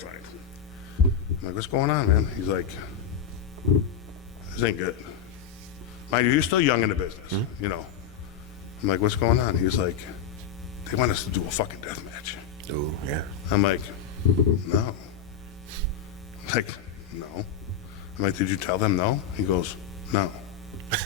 I'm like, "What's going on, man?" He's like, "This ain't good." Mind you, he's still young in the business, you know. I'm like, "What's going on?" He's like, they want us to do a fucking death match. Oh, yeah. I'm like, no. I'm like, no. I'm like, did you tell them no? He goes, no.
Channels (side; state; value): right; quieter; 7.7 dB